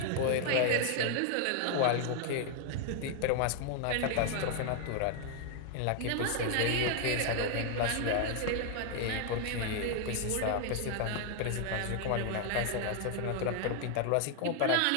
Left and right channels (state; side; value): different; both; correlation 0.00